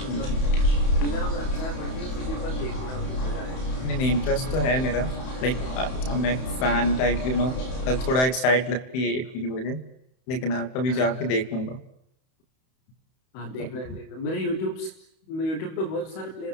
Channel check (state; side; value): late; right; 31 ms